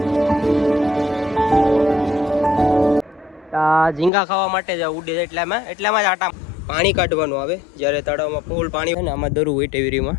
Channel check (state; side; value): drops out; right; at 4.1 s